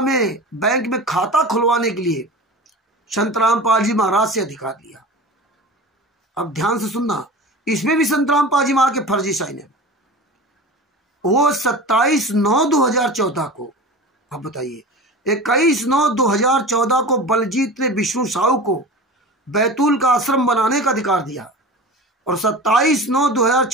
में बैंक में खाता खुलवाने के लिए संत रामपाल जी महाराज से अधिकार लिया। अब ध्यान से सुनना, इसमें भी संत रामपाल जी महाराज के फर्जी साइन है। वो 27/9/2014 को, अब बताइए, 21/9/2014 को बलजीत ने विष्णु साहू को बैतूल का आश्रम बनाने का अधिकार दिया और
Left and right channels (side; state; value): both; normal; correlation 0.34